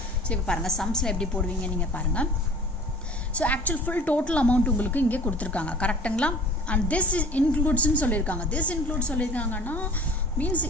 சோ இப்போ பாருங்க சம்ஸ்ல எப்படி போடுவீங்க நீங்க பாருங்க. So actual full total amount உங்களுக்கு இங்கே கொடுத்திருக்காங்க. கரெக்ட்டுங்களா? and this includes ன்னு சொல்லிருக்காங்க. this includes சொல்லிருக்காங்கன்னா means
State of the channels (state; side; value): normal; both; correlation 0.45